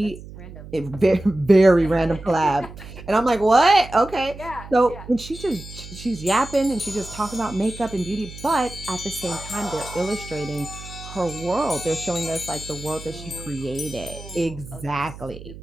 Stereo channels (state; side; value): noise; right; hum, 15 dB below the sound